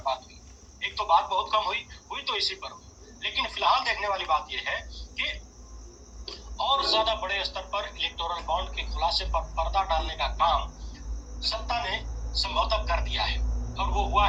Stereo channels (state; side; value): identical; both; correlation 1.00